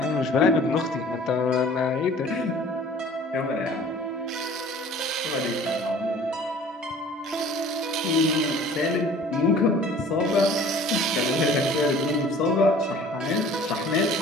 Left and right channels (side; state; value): both; normal; correlation 0.48